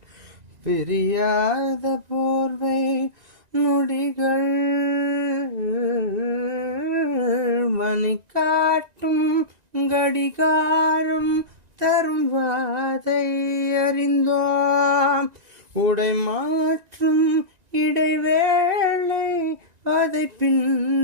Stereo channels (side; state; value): left; late; 1.9 ms